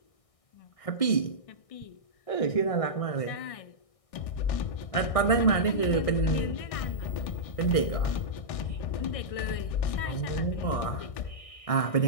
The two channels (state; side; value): late; right; 1.6 ms